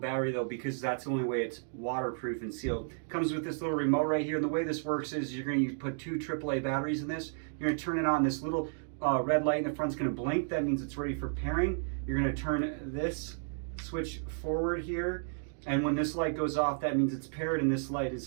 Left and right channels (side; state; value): left; silent; digital silence